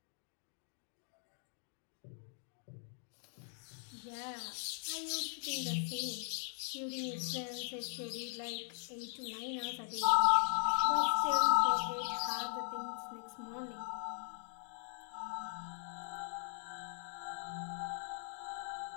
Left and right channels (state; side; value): silent; right; 51 dB below the other